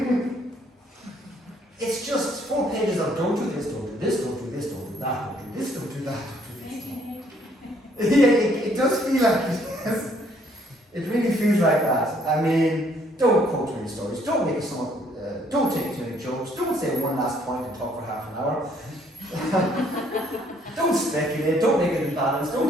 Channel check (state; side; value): normal; both; correlation 0.65